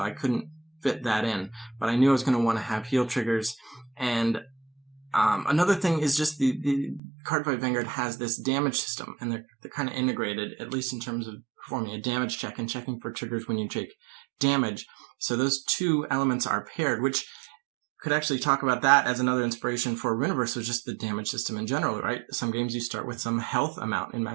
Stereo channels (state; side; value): drops out; left; at 7.0 s